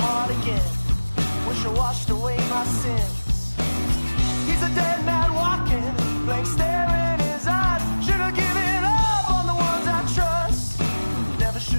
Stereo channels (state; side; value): inverted; both; correlation -1.00